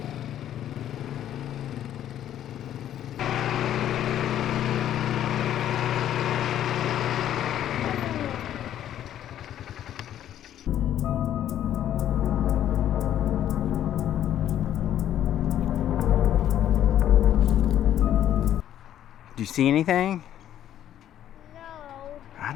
Do you see anything? No. I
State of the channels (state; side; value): quieter; right; 11.2 dB